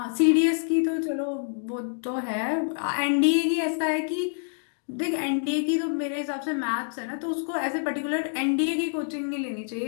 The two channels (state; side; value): silent; right; digital silence